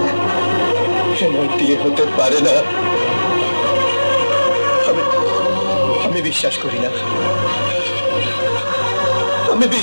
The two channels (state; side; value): inverted; both; correlation -1.00